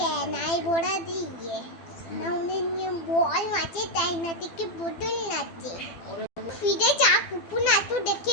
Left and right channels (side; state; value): right; late; 12 ms